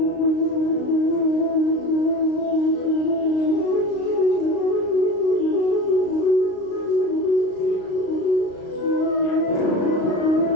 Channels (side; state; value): right; late; 35 ms